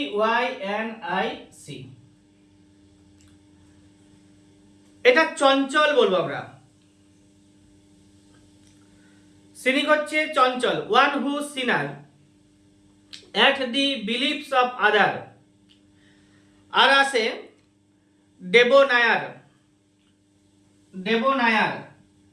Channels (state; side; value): identical; both; correlation 1.00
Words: এটা চঞ্চল বলবো আমরা। সিনিক হচ্ছে চঞ্চল, one who sneer at the beliefs of other। আর আছে ডেবোনায়ার। ডেবোনায়ার,